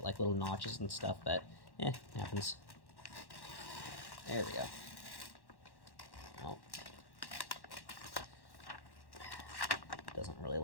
like little notches and stuff, but it happens. There we go. Oh. Doesn't really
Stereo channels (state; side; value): late; right; 1.1 ms